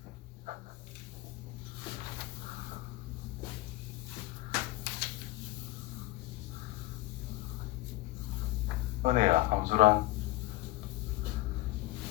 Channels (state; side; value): quieter; right; 19.2 dB